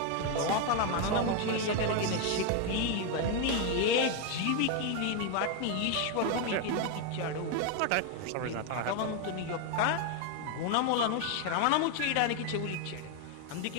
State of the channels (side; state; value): both; different; correlation 0.01